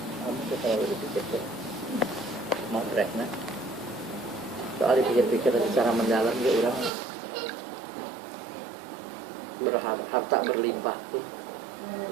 Kamu tuh terlalu dipikir tuh. Mau rekna. Soal dipikir-pikir secara mendalam dia orang harta berlimpah pun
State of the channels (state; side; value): drops out; left; at 6.9 s